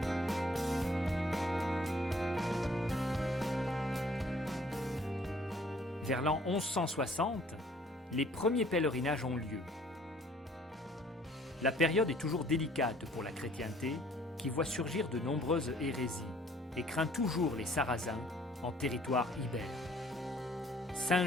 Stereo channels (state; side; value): normal; both; correlation 0.58